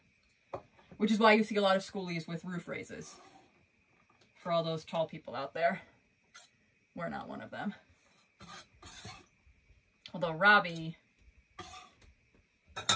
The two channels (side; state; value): both; identical; correlation 1.00